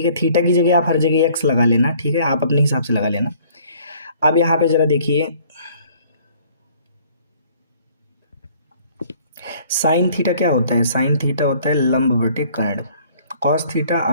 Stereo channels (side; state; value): both; inverted; correlation -0.57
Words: है। थीटा की जगह आप हर जगह एक्स लगा लेना, ठीक है, आप अपने हिसाब से लगा लेना। अब यहाँ पे ज़रा देखिए साइन थीटा क्या होता है, साइन थीटा होता है लंब बटे कर्ण। कॉस थीटा